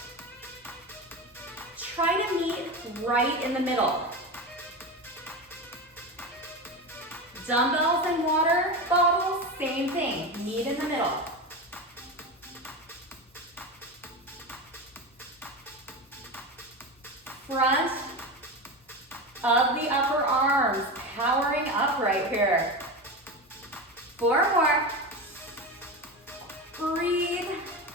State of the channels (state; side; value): normal; both; correlation 0.22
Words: Try to meet right in the middle. Dumbbells and water bottles, same thing. Meet in the middle. Front of the upper arms, powering up right here. 4 more. Breathe.